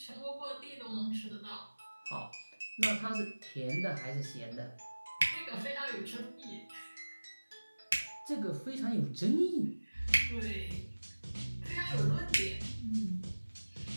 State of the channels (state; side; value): inverted; both; correlation -1.00